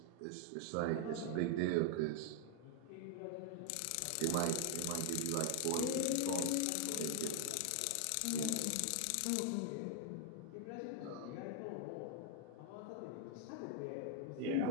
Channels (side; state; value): both; different; correlation 0.00